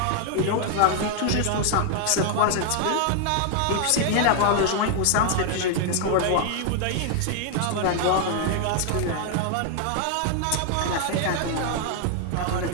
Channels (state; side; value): different; both; correlation 0.00